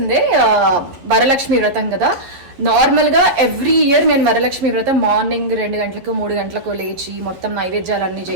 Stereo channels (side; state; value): left; late; 11 ms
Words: వరలక్ష్మి వ్రతం కదా. నార్మల్గా ఎవ్రీ ఇయర్ నేను వరలక్ష్మి వ్రతం మార్నింగ్ 2 గంటలకు 3 గంటలకు లేచి మొత్తం నైవేద్యాలన్నీ